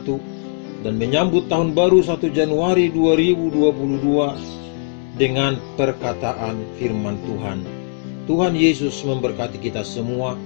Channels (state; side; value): silent; right; digital silence